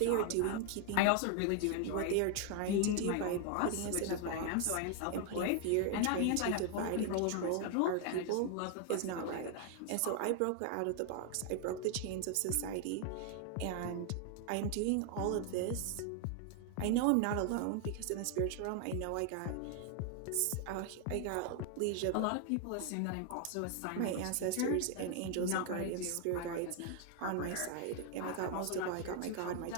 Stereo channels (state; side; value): different; both; correlation 0.00